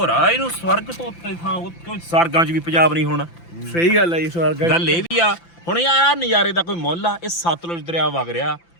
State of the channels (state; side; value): late; right; 5.9 ms